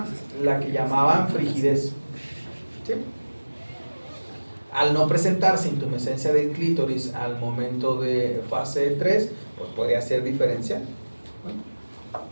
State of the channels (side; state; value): both; inverted; correlation -1.00